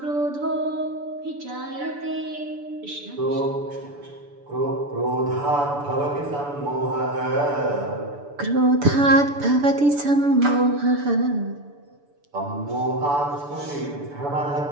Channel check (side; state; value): left; late; 6.9 ms